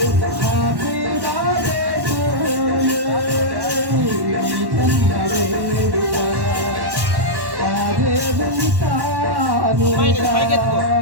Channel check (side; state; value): left; late; 1.1 ms